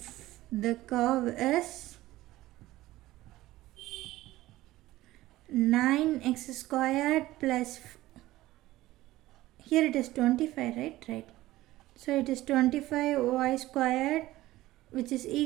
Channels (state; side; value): quieter; left; 16.8 dB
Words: the curve is 9x squared plus, here it is 25, right? Right. So it is 25y squared, which is